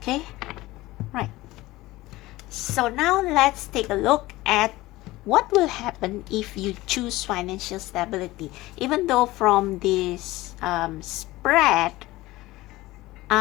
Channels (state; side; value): quieter; right; 18.6 dB